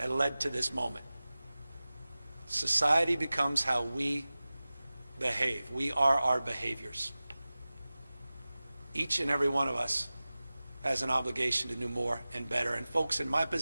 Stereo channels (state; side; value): inverted; both; correlation -0.97